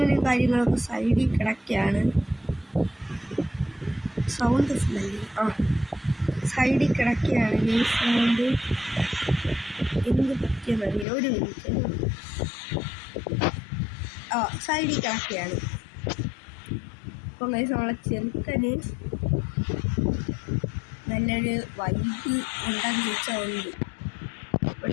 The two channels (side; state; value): right; drops out; at 11.1 s